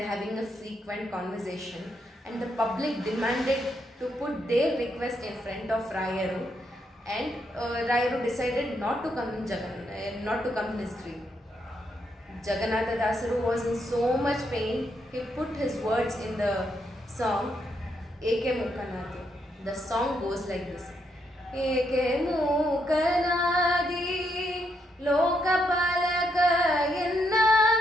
are having a frequent conversation, and the public demanded to put their request in front of Rayaru, and Rayaru decided not to come in his dream. Jagannatha Dasaru was in so much pain, he put his words in the song Eke Mukanadi. The song goes like this. Eke Mukanadi Lokapalaka Yenna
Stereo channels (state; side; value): normal; both; correlation 0.78